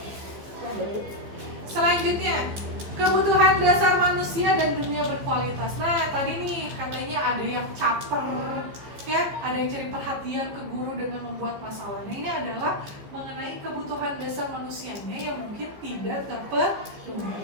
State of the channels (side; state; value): left; late; 15 ms